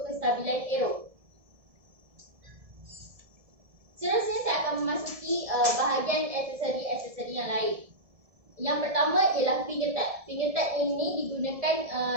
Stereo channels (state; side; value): late; left; 1.7 ms